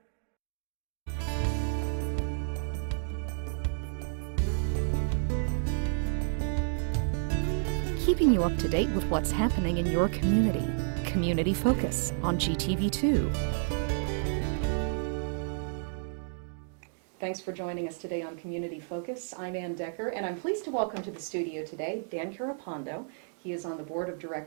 Keeping you up to date with what's happening in your community. Community Focus on GTV2. Thanks for joining us today on Community Focus. I'm Ann Decker, and I'm pleased to welcome to the studio today Dan Kearapondo. He is on the board of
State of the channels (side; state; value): left; silent; digital silence